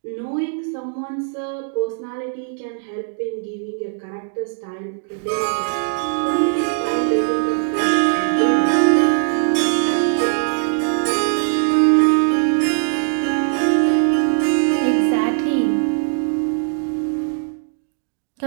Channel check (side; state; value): left; silent; digital silence